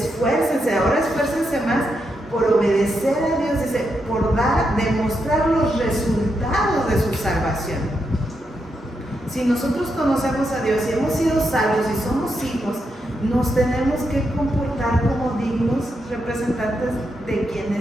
ahora esfuércense más por obedecer a Dios, dice, por demostrar los resultados de su salvación. Si nosotros conocemos a Dios y hemos sido salvos y somos hijos, nos tenemos que comportar como dignos representantes de quien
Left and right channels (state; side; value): normal; both; correlation 0.83